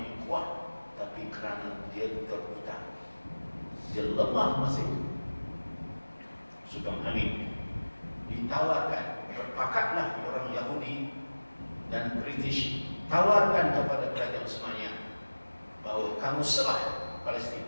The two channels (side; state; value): both; inverted; correlation -1.00